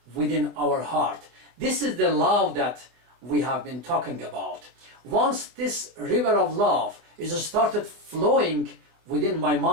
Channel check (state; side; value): late; left; 25 ms